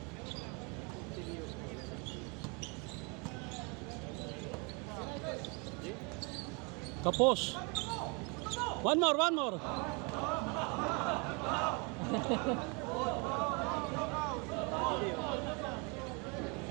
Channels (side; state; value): left; quieter; 31.9 dB